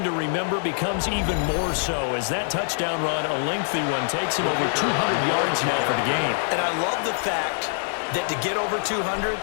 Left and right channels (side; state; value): right; silent; digital silence